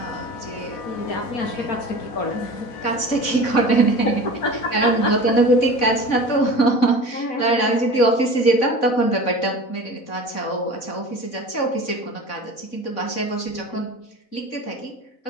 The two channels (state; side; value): late; right; 4.0 ms